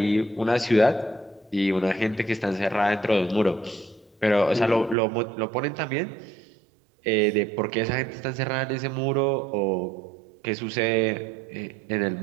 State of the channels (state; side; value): drops out; left; at 5.0 s